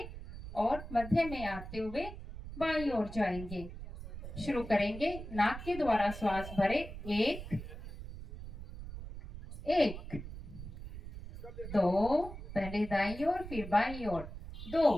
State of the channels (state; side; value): noise; right; rumble, 11 dB below the sound